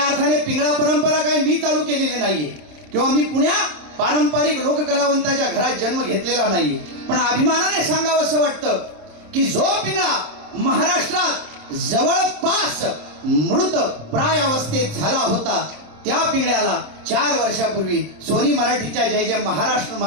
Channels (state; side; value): late; left; 26 ms